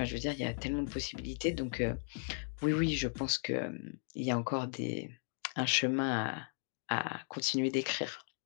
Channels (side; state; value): right; silent; 54 dB below the other